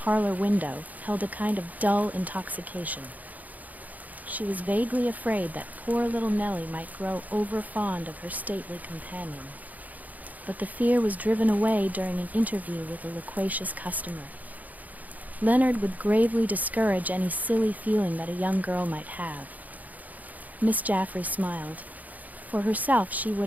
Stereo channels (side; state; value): left; late; 0.079 ms